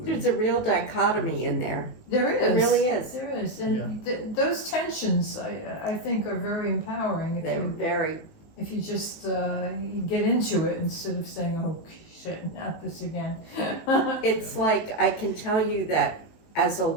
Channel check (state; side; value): late; right; 19 ms